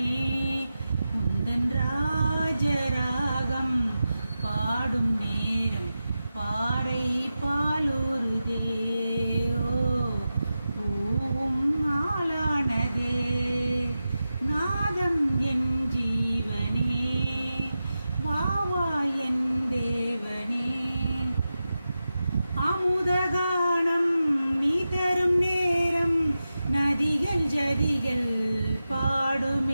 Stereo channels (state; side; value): inverted; both; correlation -0.92